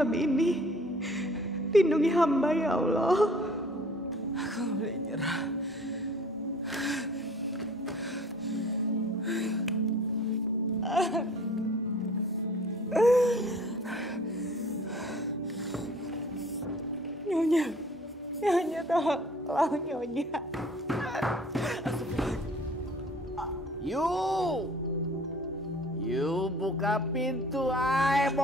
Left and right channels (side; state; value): both; normal; correlation 0.51